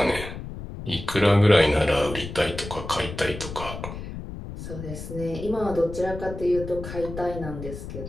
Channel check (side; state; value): left; noise; rumble, 9 dB below the sound